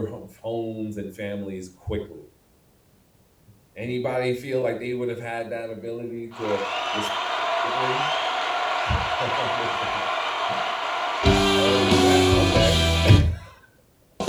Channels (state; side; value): identical; both; correlation 1.00